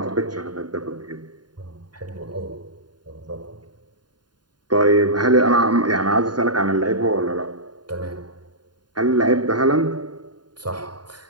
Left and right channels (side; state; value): left; late; 0.70 ms